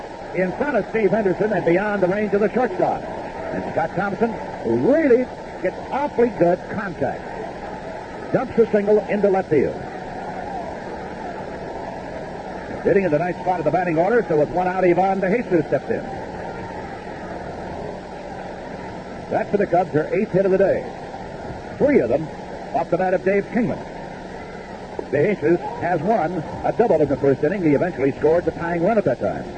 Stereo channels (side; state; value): both; identical; correlation 1.00